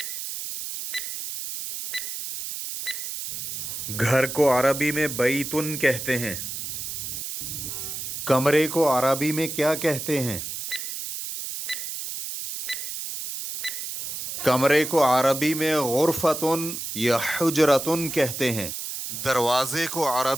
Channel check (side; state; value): right; noise; hiss, 6 dB below the sound